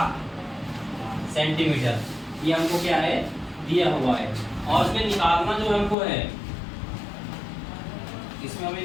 सेंटीमीटर। ये हमको क्या है, दिया हुआ है। और इसमें निकालना जो हमको है, इसमें हमें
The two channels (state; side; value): drops out; right; at 6.0 s